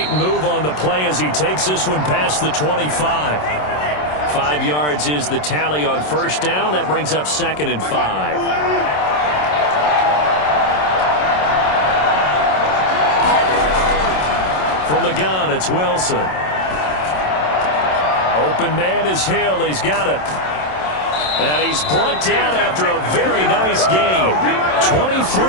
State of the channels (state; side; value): late; right; 27 ms